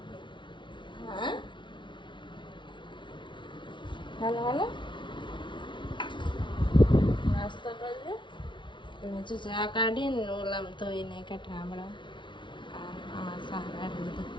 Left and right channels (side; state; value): right; late; 0.24 ms